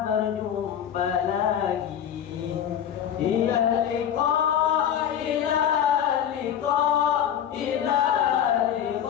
berjumpa lagi. Ila liqa, ila liqa, ila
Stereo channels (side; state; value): right; quieter; 9.6 dB